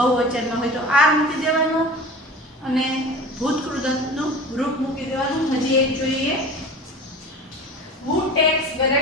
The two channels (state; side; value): normal; both; correlation 0.37